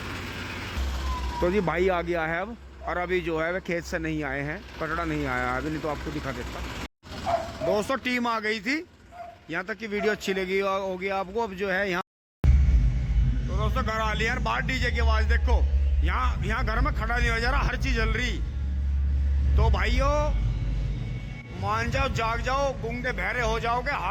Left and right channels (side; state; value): both; identical; correlation 1.00